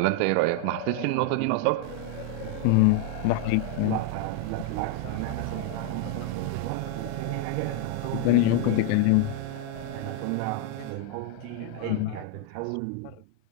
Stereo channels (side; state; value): both; different; correlation 0.00